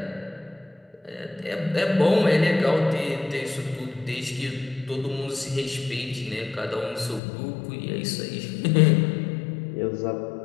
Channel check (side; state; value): right; drops out; at 7.2 s